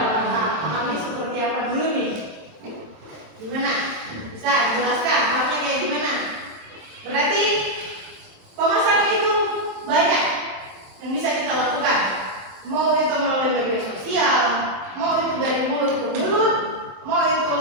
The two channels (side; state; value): left; late; 27 ms